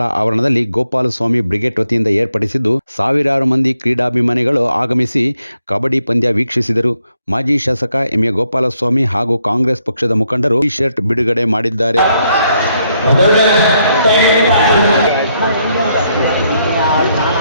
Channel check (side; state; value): both; inverted; correlation -0.75